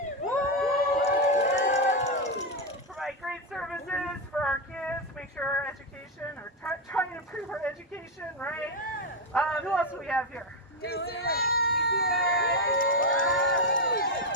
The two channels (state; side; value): normal; both; correlation 0.05